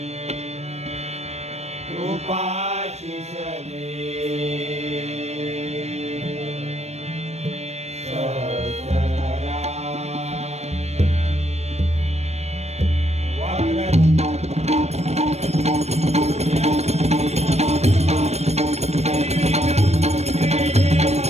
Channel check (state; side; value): late; left; 0.31 ms